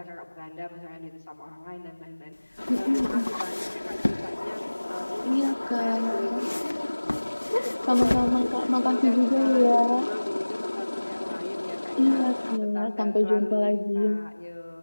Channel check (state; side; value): inverted; both; correlation -1.00